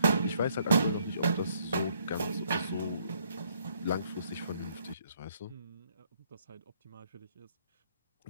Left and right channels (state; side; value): inverted; both; correlation -0.69